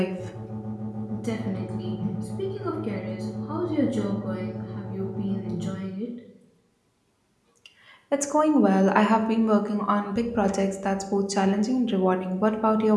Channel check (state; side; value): identical; both; correlation 1.00